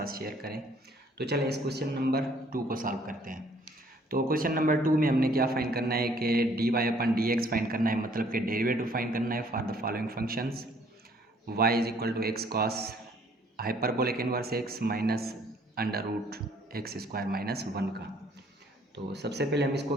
शेयर करें। तो चलें इस क्वेश्चन नंबर 2 को सॉल्व करते हैं। तो क्वेश्चन नंबर 2 में हमने क्या फाइंड करना है कि D Y upon D X find करना है, मतलब कि डेरिवेटिव फाइंड करना है for the following functions. Y is equal to X cos hyperbolic inverse X minus under root X square minus 1 का। तो सबसे पहले हम इसको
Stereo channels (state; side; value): normal; both; correlation 0.61